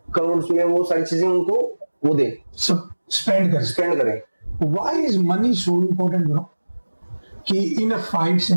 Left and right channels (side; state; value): both; inverted; correlation -1.00